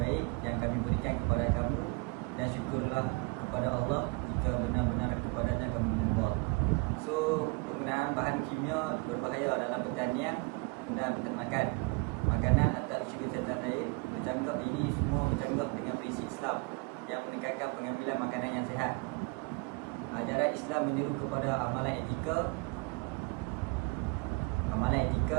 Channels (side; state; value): left; quieter; 29.1 dB